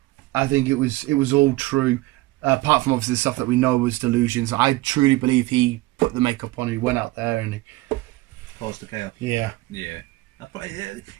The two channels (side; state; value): left; quieter; 19.6 dB